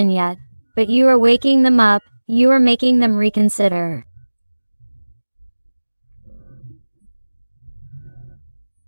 yet, but you are waking them up, you are making them reconsider.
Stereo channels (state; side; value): inverted; both; correlation -1.00